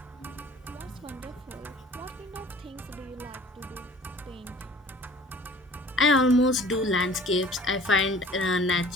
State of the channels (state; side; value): normal; both; correlation 0.49